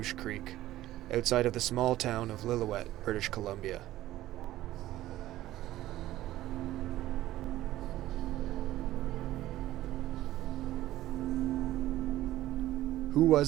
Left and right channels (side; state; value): left; quieter; 14.9 dB